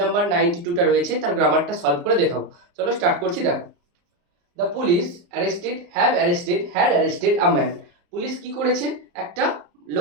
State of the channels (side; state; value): left; late; 34 ms